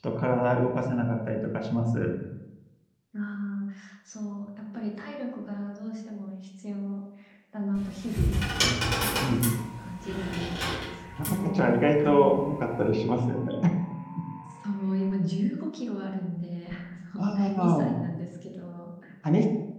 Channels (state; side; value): identical; both; correlation 1.00